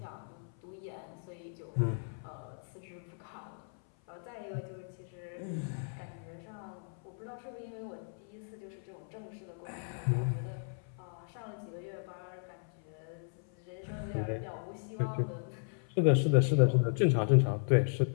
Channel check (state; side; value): silent; right; 54 dB below the other